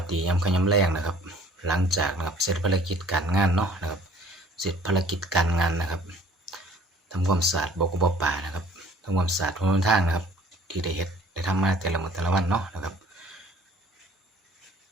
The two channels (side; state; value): both; normal; correlation 0.54